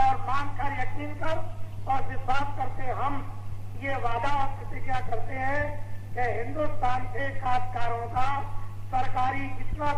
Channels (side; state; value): both; identical; correlation 1.00